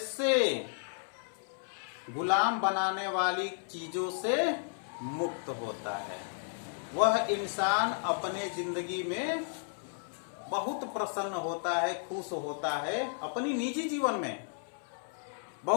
गुलाम बनाने वाली चीजों से मुक्त होता है। वह इंसान अपने जिंदगी में बहुत प्रसन्न होता है, खुश होता है, अपनी निजी जीवन में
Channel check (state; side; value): silent; right; 56 dB below the other